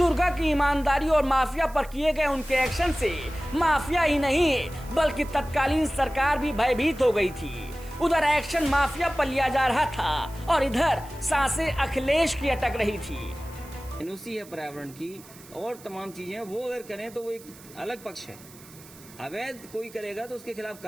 की ईमानदारी और माफिया पर किए गए उनके एक्शन से माफिया ही नहीं बल्कि तत्कालीन सरकार भी भयभीत हो गई थी। उधर एक्शन माफिया पर लिया जा रहा था और इधर सांसें अखिलेश की अटक रही थी। एनओसी है पर्यावरण की और तमाम चीजें, वो अगर करें तो वो एक अलग पक्ष है। अवैध कोई करेगा तो उसके खिलाफ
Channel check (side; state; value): right; noise; hiss, 21 dB below the sound